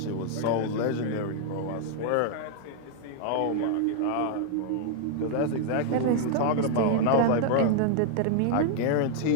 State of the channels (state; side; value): different; both; correlation 0.00